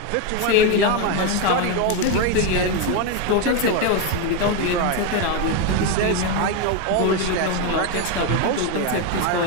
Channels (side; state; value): both; different; correlation 0.02